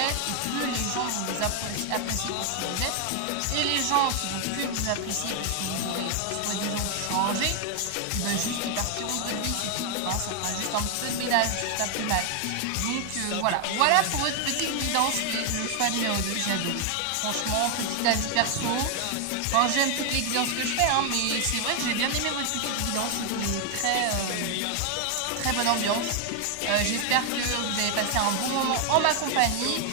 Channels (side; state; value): both; different; correlation 0.00